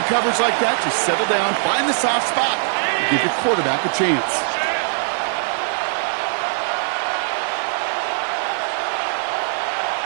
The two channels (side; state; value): left; silent; digital silence